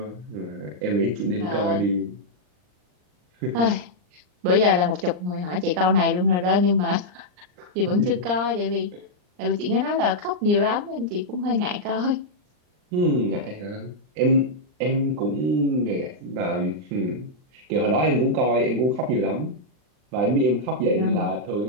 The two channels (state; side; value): late; left; 39 ms